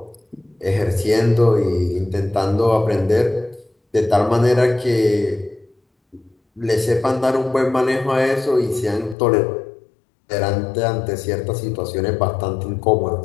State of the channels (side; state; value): right; drops out; at 9.2 s